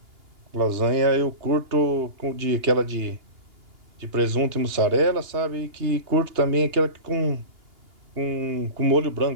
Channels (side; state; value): left; late; 2.8 ms